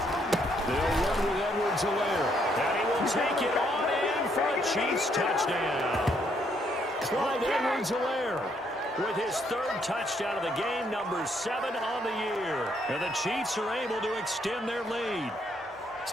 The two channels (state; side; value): normal; both; correlation 0.71